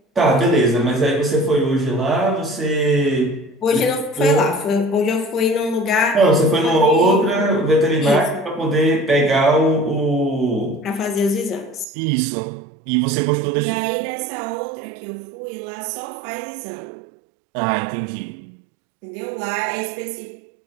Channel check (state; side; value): drops out; left; at 11.9 s